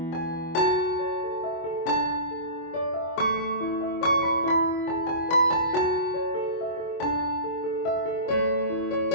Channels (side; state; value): right; late; 25 ms